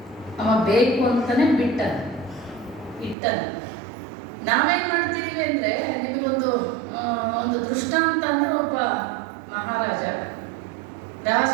ಅವ ಬೇಕು ಅಂತಾನೆ ಬಿಟ್ಟನು, ಇಟ್ಟನು. ನಾವೇನ್ ಮಾಡ್ತಿದೀವಿ ಅಂದ್ರೆ, ನಿಮಗೊಂದು ಒಂದು ದೃಷ್ಟಾಂತ ಅಂದ್ರೆ, ಒಬ್ಬ ಮಹಾರಾಜ, ರಾಜ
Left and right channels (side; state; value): left; drops out; at 3.2 s